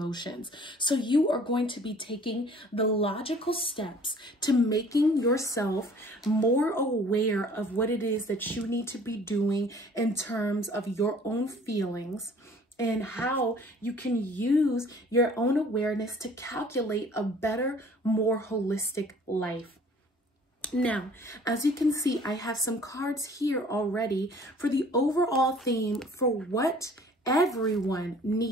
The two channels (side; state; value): both; normal; correlation 0.52